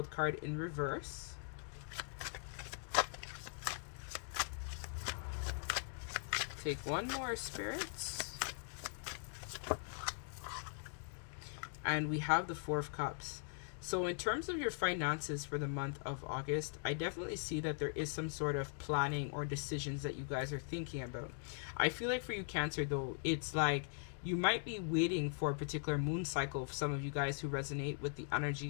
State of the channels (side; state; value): right; silent; digital silence